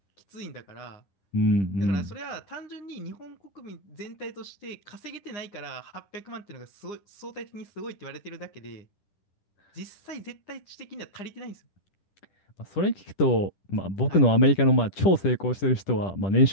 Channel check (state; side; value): late; right; 10 ms